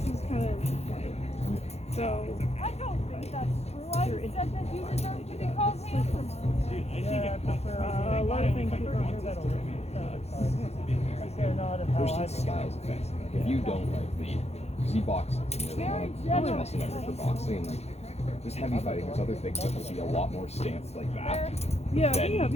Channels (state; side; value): late; right; 0.31 ms